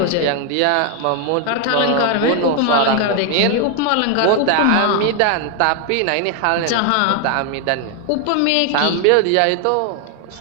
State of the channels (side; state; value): both; different; correlation 0.00